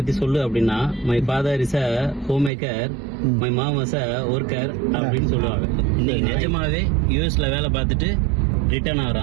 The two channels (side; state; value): left; drops out; at 2.5 s